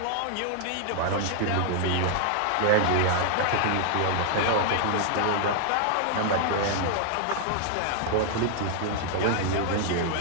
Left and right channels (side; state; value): both; different; correlation 0.00